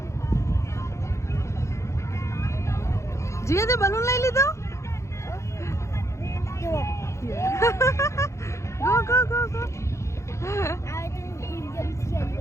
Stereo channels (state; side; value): late; right; 0.14 ms